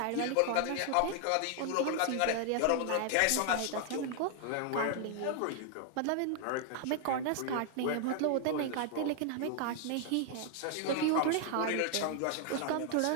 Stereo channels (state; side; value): different; both; correlation 0.00